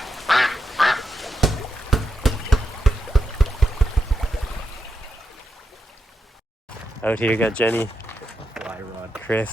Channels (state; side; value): normal; both; correlation 0.85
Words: Out here, got Jenny, Fly rod.